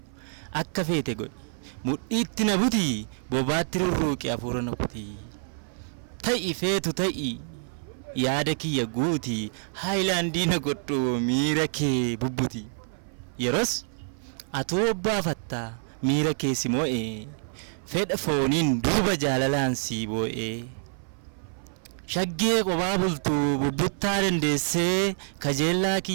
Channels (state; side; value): silent; left; 58 dB below the other